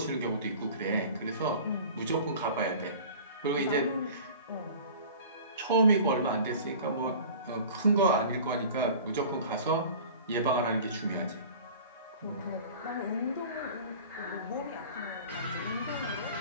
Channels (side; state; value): both; inverted; correlation -0.42